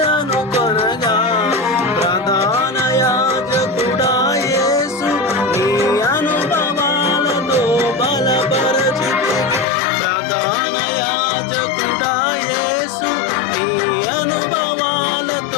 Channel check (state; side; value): drops out; right; at 9.7 s